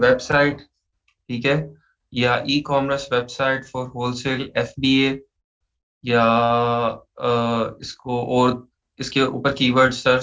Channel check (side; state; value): both; identical; correlation 1.00